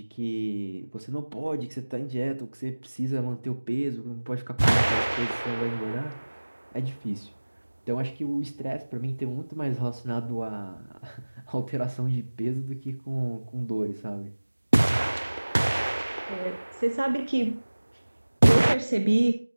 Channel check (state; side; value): inverted; both; correlation -1.00